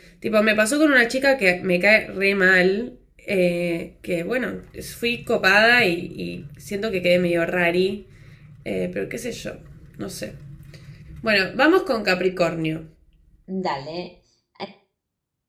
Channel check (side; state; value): both; identical; correlation 1.00